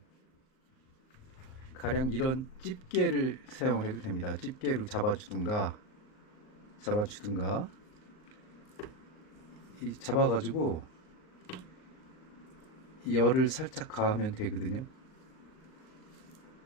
가령 이런 집게를 사용해도 됩니다. 집게로 잡아주든가 이 잡아가지고 열을 살짝 가하면 되거든요.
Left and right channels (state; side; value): late; right; 38 ms